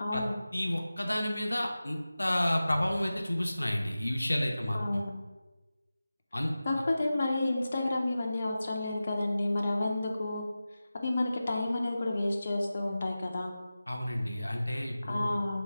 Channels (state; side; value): inverted; both; correlation -0.95